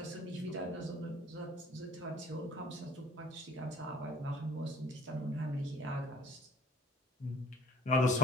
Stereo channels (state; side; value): normal; both; correlation 0.55